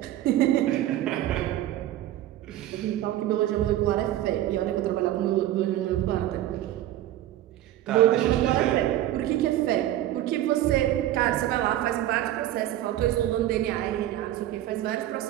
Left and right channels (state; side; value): quieter; left; 13.4 dB